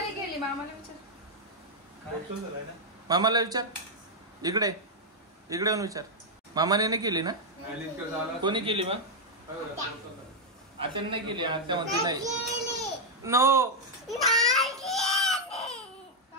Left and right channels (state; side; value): normal; both; correlation -0.01